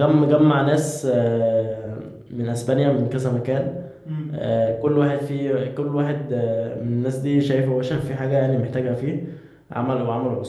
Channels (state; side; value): identical; both; correlation 1.00